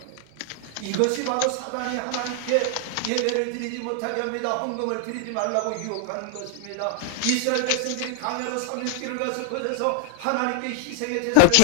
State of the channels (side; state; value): both; different; correlation 0.00